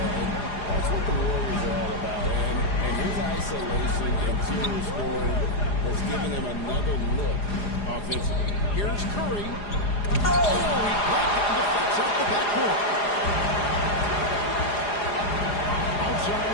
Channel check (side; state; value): right; late; 4.9 ms